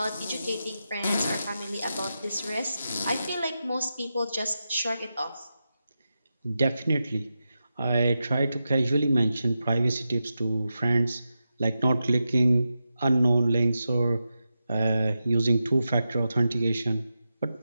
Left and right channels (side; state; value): both; inverted; correlation -0.89